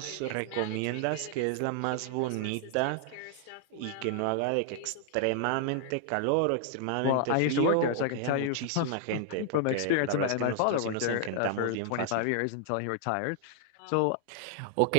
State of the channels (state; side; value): different; both; correlation 0.00